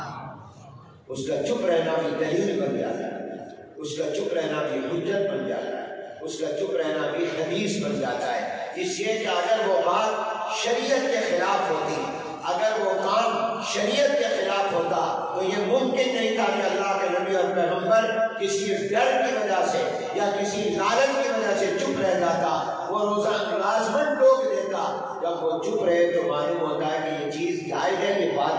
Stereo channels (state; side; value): identical; both; correlation 1.00